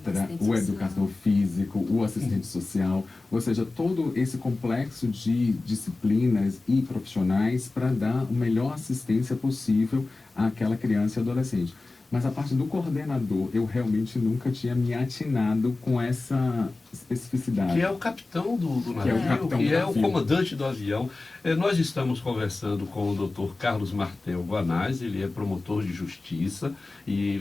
o educador físico, o assistente social, ou seja, todo esse complexo de disciplinas e profissionais para dar a melhor assistência possível àquela criança e adolescente. Mas a parte do coordenador, eu realmente nunca tinha me atinado com essa especificidade. Que é o capitão do navio, que é o comandante do avião. Nós estamos conversando com o Dr. Carlos Martel Guanais, ele é promotor de justiça e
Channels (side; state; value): right; quieter; 3.3 dB